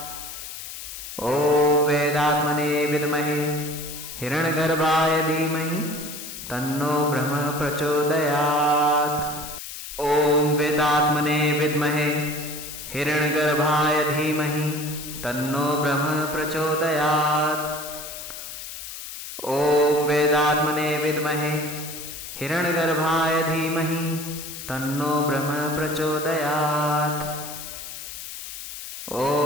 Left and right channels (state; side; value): noise; left; hiss, 10 dB below the sound